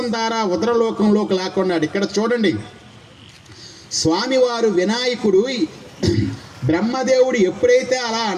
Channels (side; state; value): both; identical; correlation 1.00